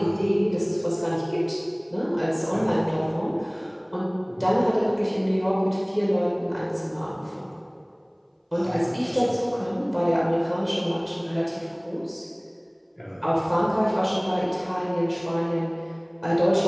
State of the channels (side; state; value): both; identical; correlation 1.00